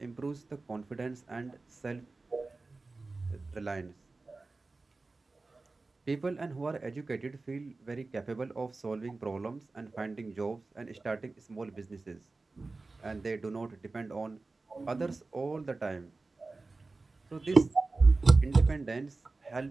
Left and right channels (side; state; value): left; quieter; 3.6 dB